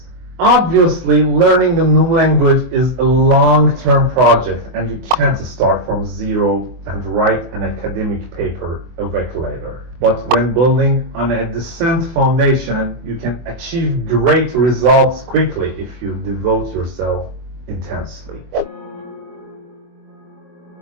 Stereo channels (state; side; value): late; left; 24 ms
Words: Obviously, learning a new language is a long-term project and you can't start from zero and write an academic paper a week later. But when building on a decent foundation, you can achieve great results quickly if you devote yourself intensely.